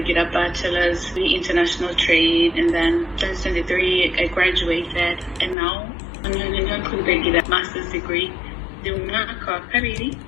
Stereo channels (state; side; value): drops out; right; at 5.6 s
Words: bachelor's in international trade, and then 2023 I graduated, and now I'm ndagira master's degree. Ndi umwaka wa kabiri